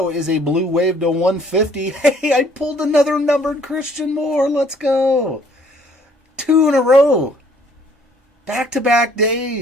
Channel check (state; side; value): normal; both; correlation 0.60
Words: is a Blue Wave to 150. Hey, I pulled another numbered Christian Moore. Let's go. 2 in a row. Back-to-back